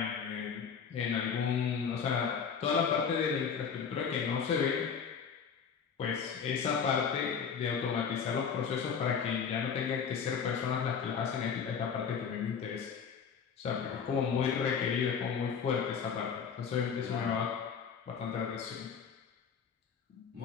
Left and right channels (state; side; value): quieter; right; 6.7 dB